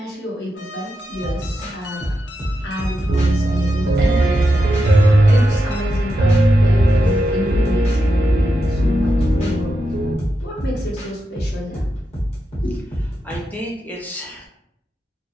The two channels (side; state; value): both; normal; correlation 0.87